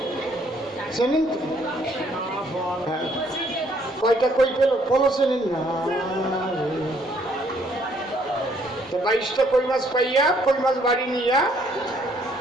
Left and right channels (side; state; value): both; normal; correlation 0.66